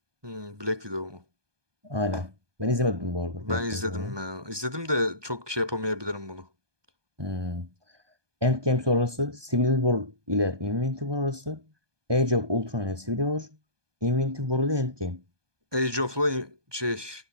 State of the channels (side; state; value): left; late; 1.2 ms